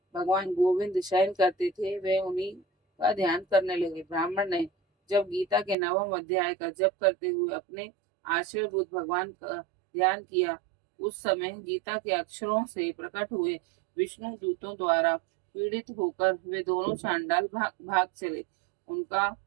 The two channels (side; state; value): left; drops out; at 5.8 s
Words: भगवान गोविंद शयन करते थे, वे उन्हीं का ध्यान करने लगे। ब्राह्मण ने जब गीता के 9वें अध्याय का जप करते हुए अपने आश्रयभूत भगवान का ध्यान किया, उस समय गीता के अक्षरों से प्रकट हुए विष्णु दूतों द्वारा पीड़ित होकर वे दोनों चांडाल भाग चले। उनका